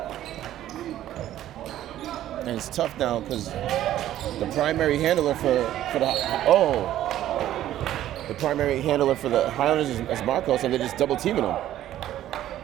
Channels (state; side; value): quieter; left; 12.7 dB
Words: And it's tough now because the primary handler for the Highlanders is Marcos, and they're just double teaming him.